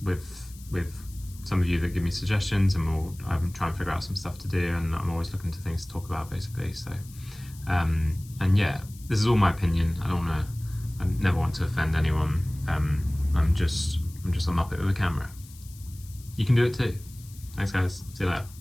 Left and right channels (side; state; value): left; noise; hiss, 21 dB below the sound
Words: with some of you that give me suggestions, and I'm trying to figure out some stuff to do, and I'm always looking to things to talk about, basically. So and yeah, this is all my opinion. I never want to offend anyone. I'm just a muppet with a camera. You can do it too. Thanks guys, see you later.